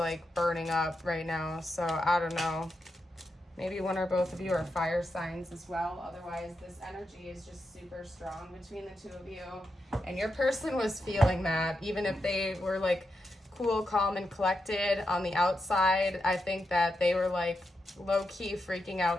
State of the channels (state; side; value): normal; both; correlation 0.86